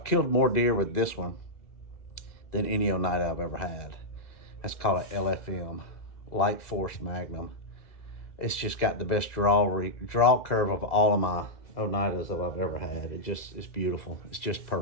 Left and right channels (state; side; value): late; right; 2.0 ms